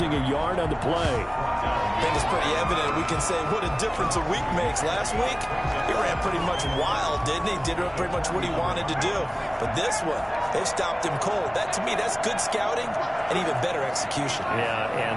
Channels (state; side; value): identical; both; correlation 1.00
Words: a yard on the play. I think it's pretty evident. We can say what a difference a week makes. Last week, he ran pretty much wild, didn't he? Did pretty much what he wanted to do. But this one, they've stopped him cold. That, to me, that's good scouting and even better execution. Yeah,